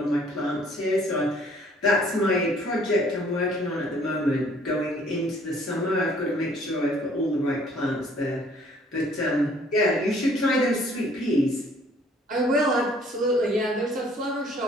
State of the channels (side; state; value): both; normal; correlation 0.59